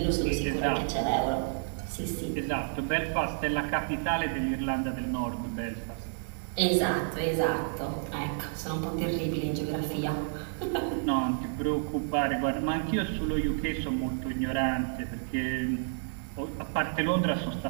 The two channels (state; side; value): silent; left; digital silence